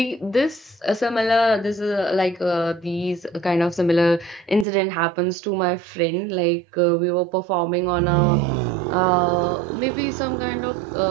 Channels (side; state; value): left; drops out; at 4.7 s